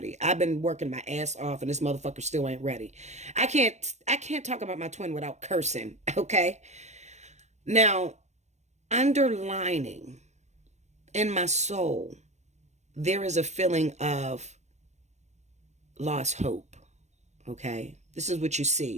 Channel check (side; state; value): left; late; 0.33 ms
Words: I've been working my ass off and this motherfucker still ain't ready. I can't talk about my twin without cursing, okay? Now, underlining in my soul, there is a feeling of lost hope, okay? This is what you